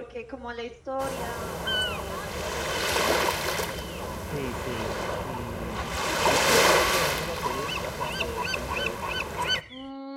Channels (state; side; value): identical; both; correlation 1.00